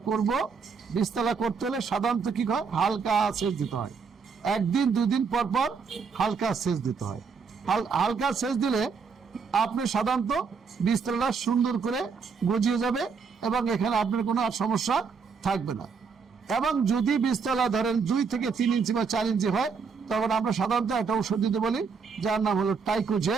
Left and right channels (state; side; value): quieter; left; 5.6 dB